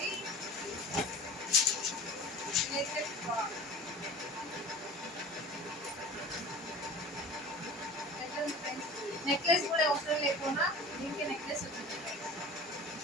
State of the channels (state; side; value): normal; both; correlation 0.39